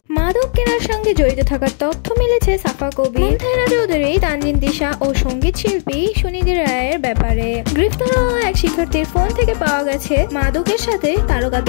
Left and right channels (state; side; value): silent; right; 68 dB below the other